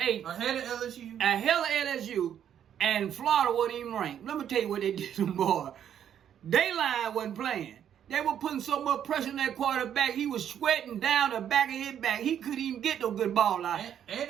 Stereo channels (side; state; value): left; quieter; 9.5 dB